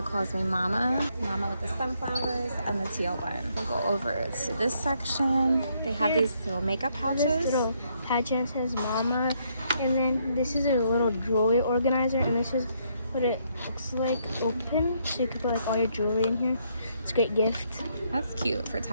calls me Mama. Mama with the sunflowers and the teal one. We'll go over to this section. They have these little makeup pouches. This little pouch says Mama. And then this is a little jewelry organizer. And this is what it looks like open. So you can put like all your jewelry in here. It's a great gift. That's cute for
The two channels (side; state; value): both; inverted; correlation -0.72